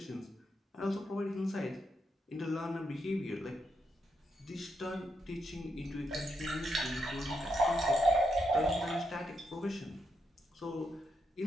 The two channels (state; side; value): normal; both; correlation 0.81